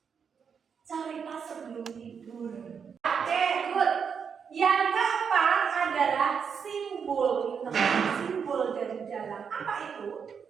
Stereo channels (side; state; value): left; quieter; 6.7 dB